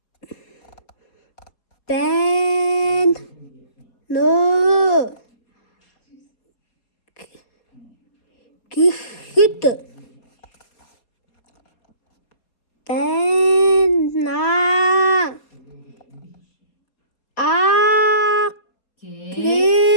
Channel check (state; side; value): late; right; 4.2 ms